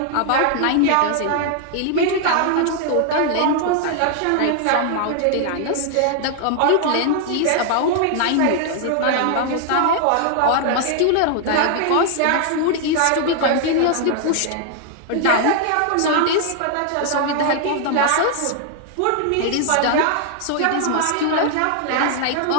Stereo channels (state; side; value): different; both; correlation 0.00